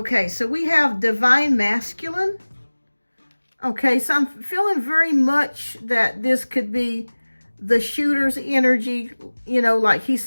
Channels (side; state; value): both; inverted; correlation -1.00